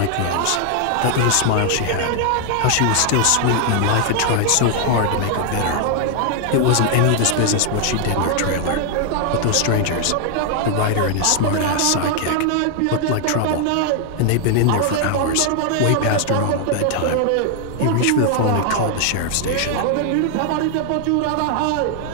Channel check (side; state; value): both; different; correlation 0.00